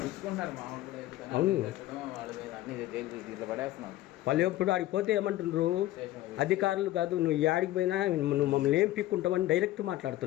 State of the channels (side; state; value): right; quieter; 15.4 dB